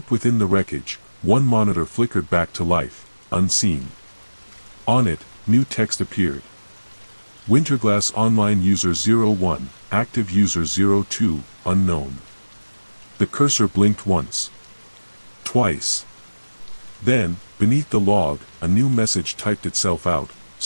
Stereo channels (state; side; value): inverted; both; correlation -1.00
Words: within the wreckage, one monitor flickered back to life, unseen. On it, new text appeared. Winterglass Online User 01, Active User 02, Unknown. The cursor blinked once. Twice. Then, beneath the log, a new message typed itself out,